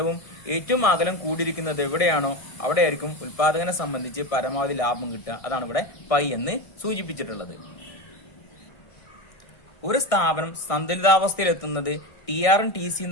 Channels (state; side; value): late; right; 1.6 ms